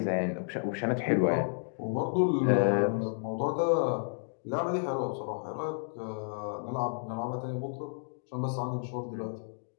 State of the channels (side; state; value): right; silent; digital silence